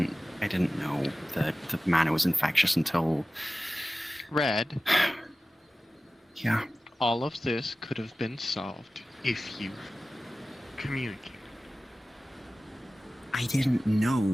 know that the mana was infectious until. Red. Yeah. All of this could have been solved if you communicated. I didn't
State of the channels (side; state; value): both; normal; correlation 0.96